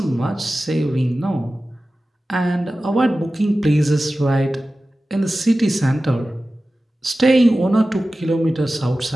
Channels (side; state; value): both; normal; correlation 0.95